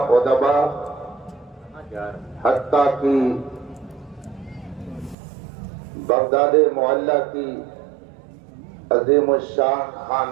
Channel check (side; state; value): left; drops out; at 5.2 s